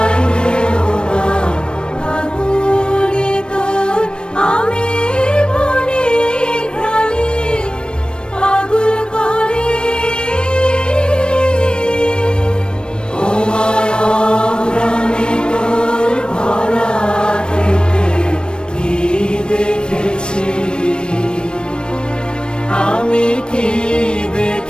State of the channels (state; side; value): late; right; 0.053 ms